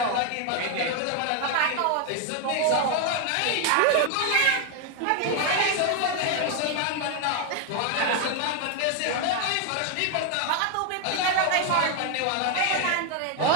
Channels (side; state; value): both; different; correlation 0.01